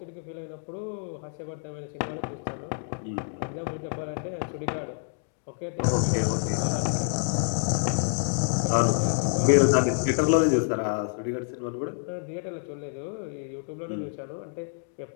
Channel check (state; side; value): silent; right; digital silence